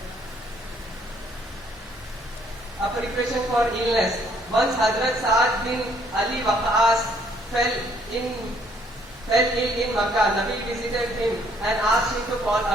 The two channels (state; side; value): normal; both; correlation 0.65